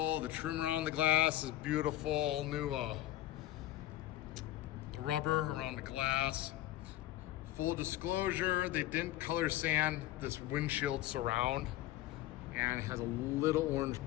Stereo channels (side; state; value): right; quieter; 14.9 dB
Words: The trim around the glass is beautiful. All new the rubber around the glass. Full disclosure, they didn't color sand this windshield surround, and it has a little orange